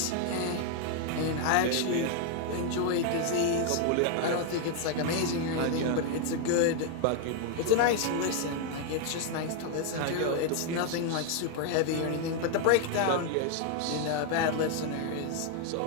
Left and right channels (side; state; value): both; different; correlation 0.00